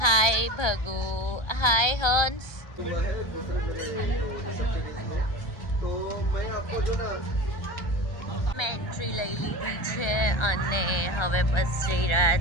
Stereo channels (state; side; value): late; right; 1.3 ms